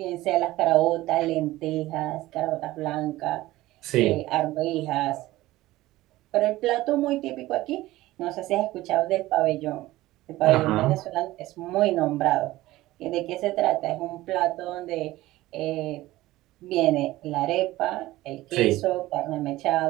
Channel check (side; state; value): left; quieter; 17.2 dB